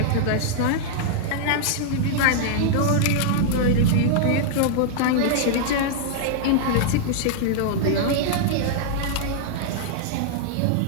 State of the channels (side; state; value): both; different; correlation -0.01